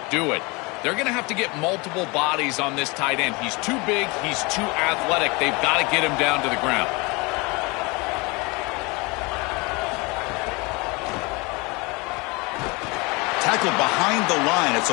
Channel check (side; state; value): right; quieter; 26.6 dB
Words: do it. They're going to have to get multiple bodies on this tight end. He's too big. He's too athletic. They've got to get him down to the ground. Tackled behind the line. It's